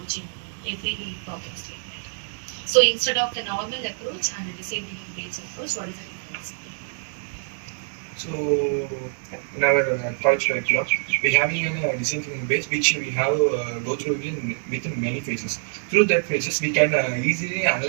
in every problem statement? So instead of the normal approach and the design thinking based approach, what is the difference? So in our college curriculum, we have a design thinking base which we have go through within many phases. Through that phases, we can easily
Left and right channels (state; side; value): silent; left; 62 dB below the other